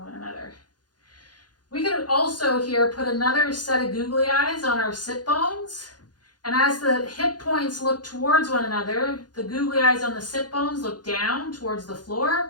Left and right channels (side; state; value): right; late; 0.69 ms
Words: one another. We could also here put another set of googly eyes on our sit bones, and as the hip points look towards one another, the googly eyes on the sit bones look down towards the